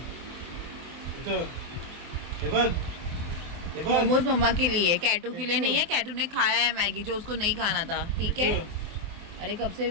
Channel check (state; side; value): late; left; 24 ms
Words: हे बघ मोमोज मम्मा के लिए, कैटू के लिए नहीं है. कैटू ने खाया है मैगी जो उसको नहीं खाना था. ठीक है. अरे कब से